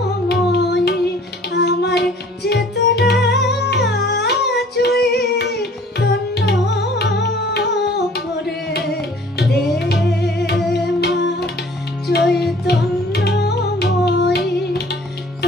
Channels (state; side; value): normal; both; correlation 0.52